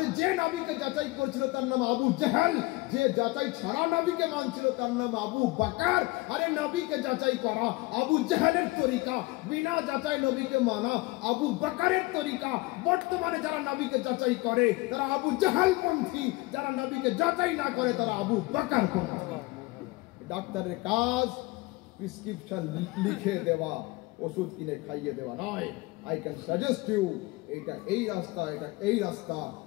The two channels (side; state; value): right; quieter; 22.3 dB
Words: যে নবীকে যাচাই করছিল তার নাম আবু জাহল, যে যাচাই ছাড়া নবীকে মানছিল তার নাম আবু বকর। আরে নবীকে যাচাই করা আবু জাহলের তরিকা, বিনা যাচাই নবীকে মানা আবু বকরের তরিকা। বর্তমানে যারা নবীকে যাচাই করে তারা আবু জাহল পন্থী, যারা নবীকে যাচাই না করে তারা আবু বকর পন্থী। ডাক্তারের কাজ প্রেসক্রিপশন লিখে দেওয়া, ওষুধ কিনে খাইয়ে দেওয়া নয়। আই ক্যান সাজেস্ট ইউ এটা এই রাস্তা, এটা এই রাস্তা,